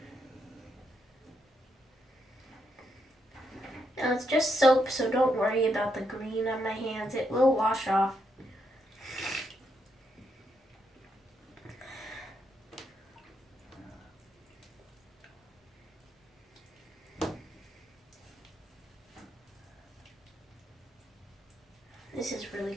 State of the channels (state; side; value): normal; both; correlation 0.79